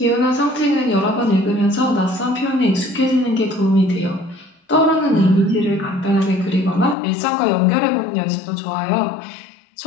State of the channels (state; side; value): drops out; right; at 7.0 s